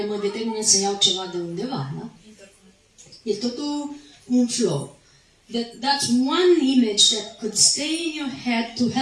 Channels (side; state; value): both; identical; correlation 1.00